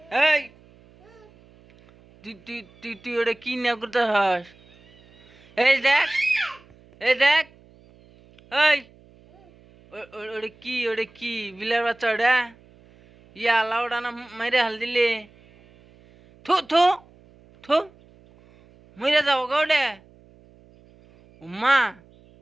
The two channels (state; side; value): noise; right; hum, 27 dB below the sound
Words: এই তুই তুই তুই তুই ওটা কি না করতে হস এই দেখ এই ওটা কি বিলার বাচ্চা ওটা ইয়া আল্লাহ ওটা না মাইরে হাল দিলে থু থু থু মরে যাবো গা ওটা উম্মা